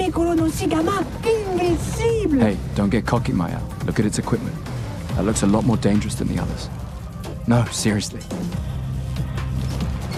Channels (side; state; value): both; identical; correlation 1.00